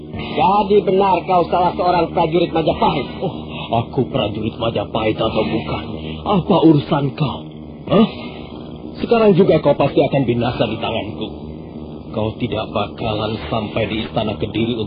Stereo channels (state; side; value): identical; both; correlation 1.00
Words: jadi benar kau salah seorang prajurit Majapahit? Oh, aku prajurit Majapahit atau bukan? Apa urusan kau? Hah? Sekarang juga kau pasti akan binasa di tanganku. Kau tidak bakalan sampai di istana Kediri